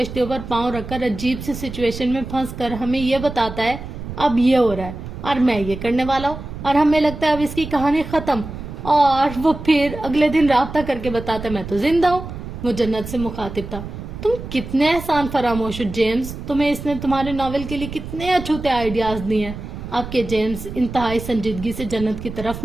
پر پاؤں رکھ کر عجیب سی سچویشن میں پھنس کر ہمیں یہ بتاتا ہے اب یہ ہو رہا ہے اور میں یہ کرنے والا ہوں, اور ہمیں لگتا ہے اب اس کی کہانی ختم, اور وہ پھر اگلے دن رابطہ کر کے بتاتا ہے میں تو زندہ ہوں. وہ جنت سے مخاطب تھا. تم کتنے احسان فراموش ہو جیمز. تمہیں اس نے تمہارے ناول کے لیے کتنے اچھوتے آئیڈیاز دیے ہیں. اب کے جیمز انتہائی سنجیدگی سے جنت کی طرف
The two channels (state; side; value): noise; right; rumble, 10 dB below the sound